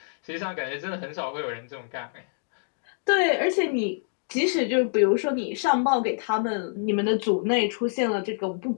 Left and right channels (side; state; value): right; silent; digital silence